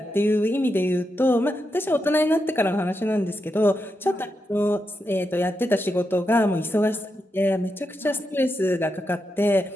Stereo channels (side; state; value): both; normal; correlation 0.86